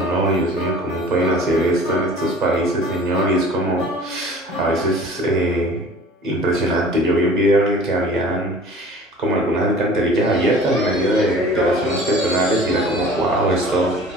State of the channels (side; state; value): both; normal; correlation 0.45